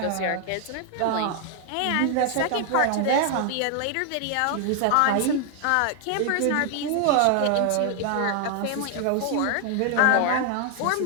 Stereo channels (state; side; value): different; both; correlation 0.00